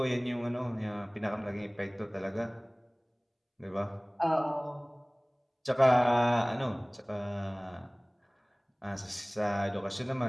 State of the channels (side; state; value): both; identical; correlation 1.00